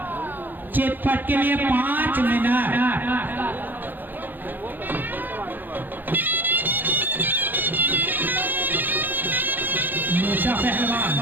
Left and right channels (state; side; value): late; left; 0.089 ms